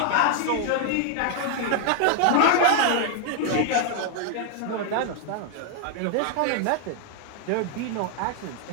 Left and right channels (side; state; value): both; different; correlation 0.01